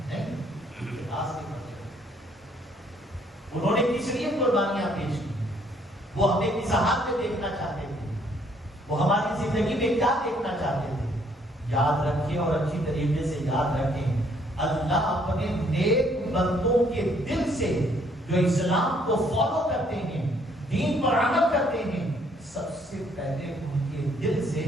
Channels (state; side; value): normal; both; correlation 0.66